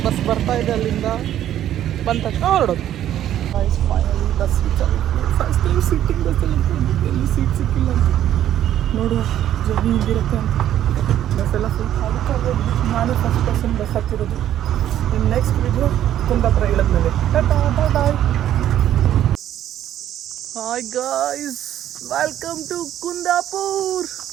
ಬಸ್ ಬರ್ತಾ ಇದೆ ಅಲ್ಲಿಂದ. ಬಂದ ತಕ್ಷಣ ಹೊರಡೋದು. ಫೈನಲಿ ಬಸ್ ರೀಚ್ ಆಗಿರ್ತೀನಿ. ಫಸ್ಟ್ ಟೈಮ್ ಸಿಟ್ಟಿಂಗ್ ಬಸ್ಸಲ್ಲಿ ಎಲ್ಲಿ ಸೀಟ್ ಸಿಕ್ಕಿಲ್ಲ ಅಂತ ನೋಡುವ ಜರ್ನಿ ಹಿಂಗಿರುತ್ತೆ ಅಂತ. ಬಸ್ಸೆಲ್ಲ ಫುಲ್ ಖಾಲಿ. ನಾನು ಫಸ್ಟ್ ಪರ್ಸನ್ ಬಸ್ ಹತ್ತಿರೋದು. ಇನ್ನು ನೆಕ್ಸ್ಟ್ ವಿಡಿಯೋ ಕುಂದಾಪುರ ಇಳಿದ್ಮೇಲೆ. Tata bye bye. Hi guys, welcome to Kundapur.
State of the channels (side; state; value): left; quieter; 11.6 dB